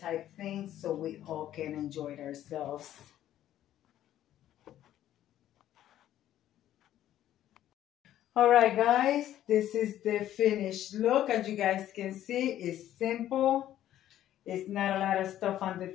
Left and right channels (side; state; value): right; quieter; 12.3 dB